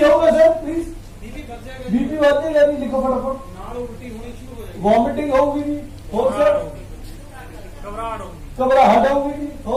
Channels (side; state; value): both; identical; correlation 1.00